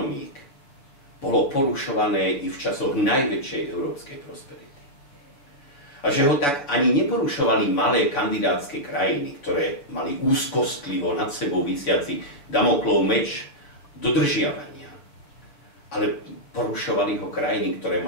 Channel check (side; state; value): right; late; 7.1 ms